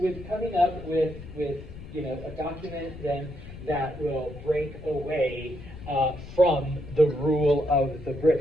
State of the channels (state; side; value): noise; left; rumble, 14 dB below the sound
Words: coming up with you know, a document then that will break away from the rule of the